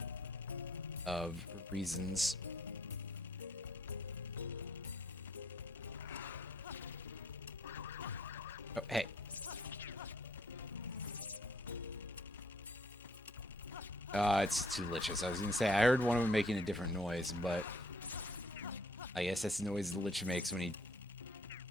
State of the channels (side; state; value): both; normal; correlation 0.65